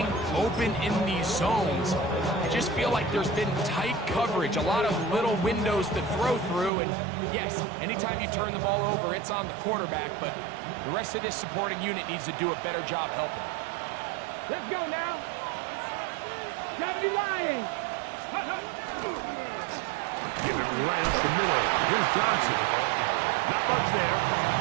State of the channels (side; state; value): left; drops out; at 6.7 s